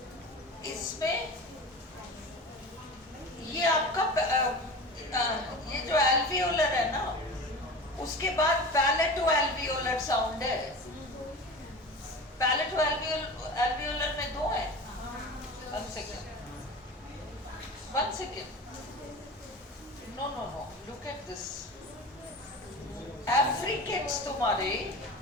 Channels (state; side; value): normal; both; correlation 0.33